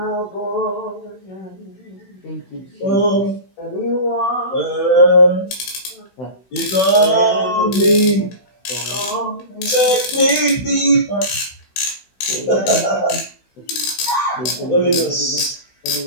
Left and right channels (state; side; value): late; right; 16 ms